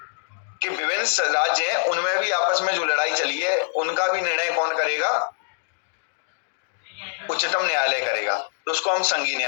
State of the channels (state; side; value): silent; right; 62 dB below the other